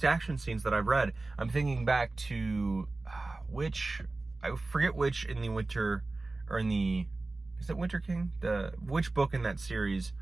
action scenes that I've read. I'm thinking back to I forget which in the Winter, or in the, is it Winter King? Which book in that series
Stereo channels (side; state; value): left; quieter; 3.2 dB